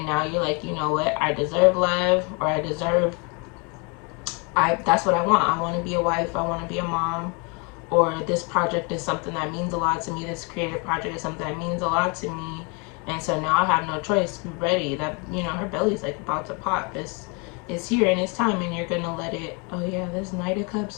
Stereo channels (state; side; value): quieter; right; 32.3 dB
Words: now you're like, you know what, I deserve love, or I deserve, that's what I want. I want to be a wife, I want to be a mom, or this project is something that means a lot to me. This creative project is something that means a lot to me. And so now I have no choice. Be ready. That, you know, her belly's like about to pop. It's here, and it's time, and you're gonna let it. Oh yeah, there's Knight of